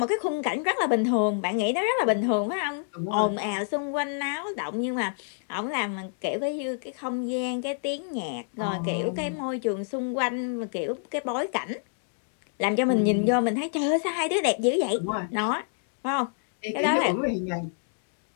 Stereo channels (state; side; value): silent; right; digital silence